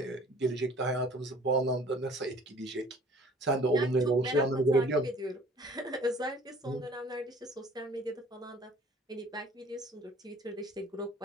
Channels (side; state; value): both; normal; correlation 0.52